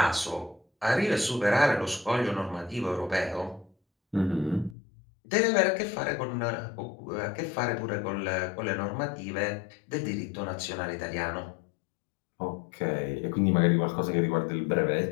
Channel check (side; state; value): right; drops out; at 4.8 s